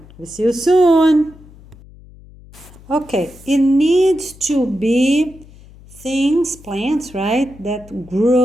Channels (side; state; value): left; noise; hum, 22 dB below the sound